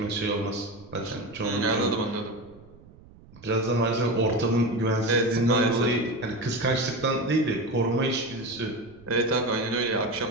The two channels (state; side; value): noise; right; rumble, 23 dB below the sound